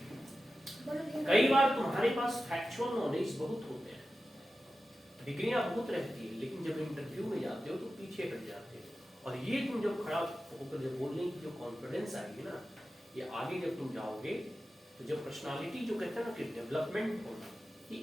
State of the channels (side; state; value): both; normal; correlation 0.93